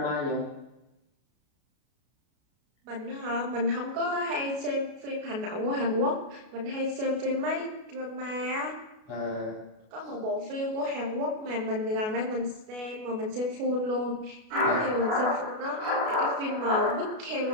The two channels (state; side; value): late; left; 33 ms